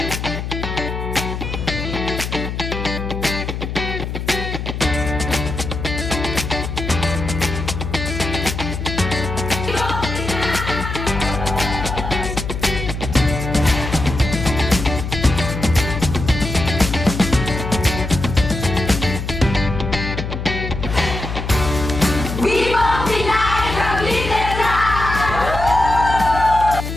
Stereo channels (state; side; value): noise; left; hum, 5 dB below the sound